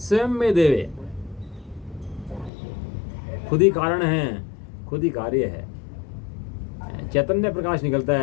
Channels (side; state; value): right; drops out; at 2.5 s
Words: में देवे। खुद ही कारण है, खुद ही कार्य है। चैतन्य प्रकाश निकलता